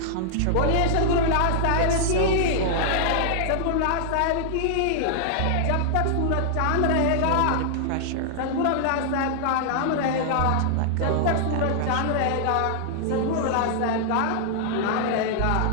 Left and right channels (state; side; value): different; both; correlation -0.01